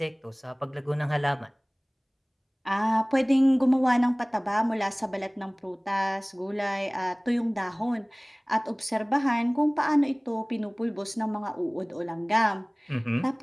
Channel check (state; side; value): identical; both; correlation 1.00